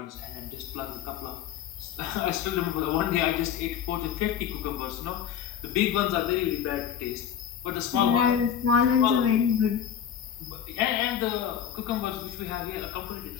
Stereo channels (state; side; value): quieter; right; 9.1 dB